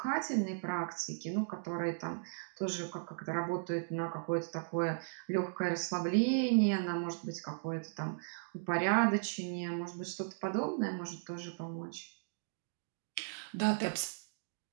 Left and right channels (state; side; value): silent; left; digital silence